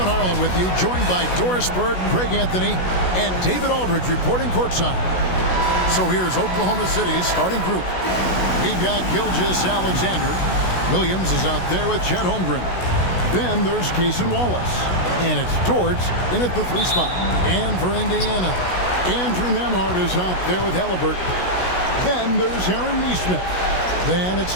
Harlan with you, joined by Doris Bird, Greg Anthony, and David Aldridge reporting courtside. So here's Oklahoma City's starting group. We've got Gilgeous Alexander. Williams is out there with Chet Holmgren. Then there's Cason Wallace. And it's Dort in at the 3 spot. And for Indiana, Andrew Nembhard is out there with Halliburton. Then there's Aaron Nesmith. Then it's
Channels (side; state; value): right; late; 16 ms